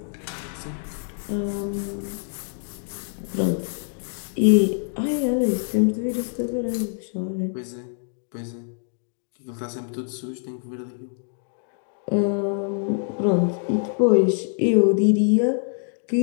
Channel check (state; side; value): silent; right; 62 dB below the other